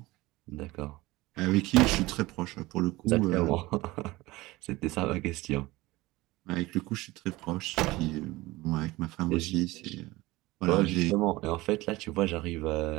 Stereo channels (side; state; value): left; quieter; 19.9 dB